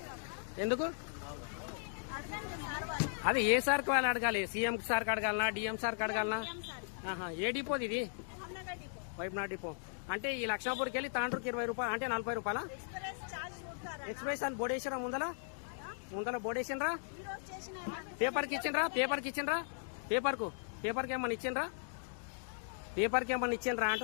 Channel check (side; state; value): right; silent; digital silence